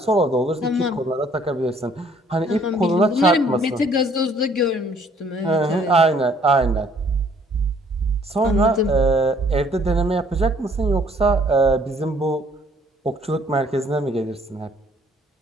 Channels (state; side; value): normal; both; correlation 0.61